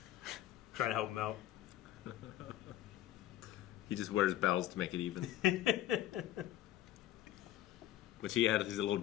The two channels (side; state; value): right; quieter; 13.1 dB